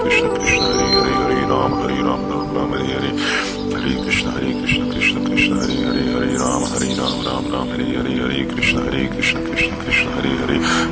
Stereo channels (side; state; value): both; identical; correlation 1.00